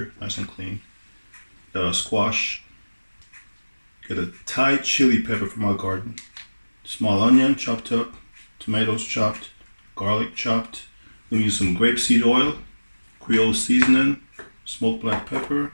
nice and clean. Got a squash. Got a Thai chili pepper from our garden. Small onion chopped up, tomatoes chopped, garlic chopped. We're using some grapeseed oil, Creole seasoning, smoked black pepper,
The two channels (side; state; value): both; inverted; correlation -1.00